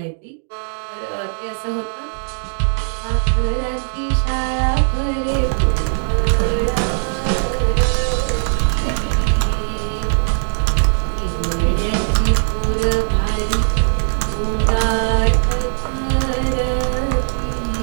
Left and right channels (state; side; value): silent; left; digital silence